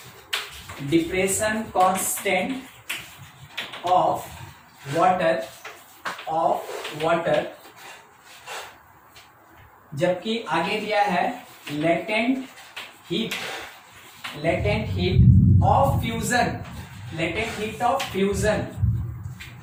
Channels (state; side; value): identical; both; correlation 1.00